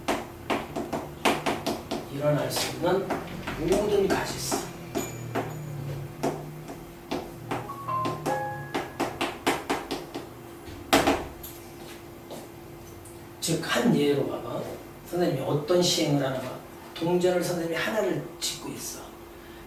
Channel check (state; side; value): identical; both; correlation 1.00